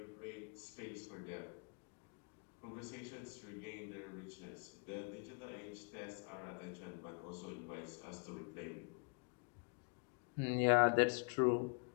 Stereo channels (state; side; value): quieter; right; 36.6 dB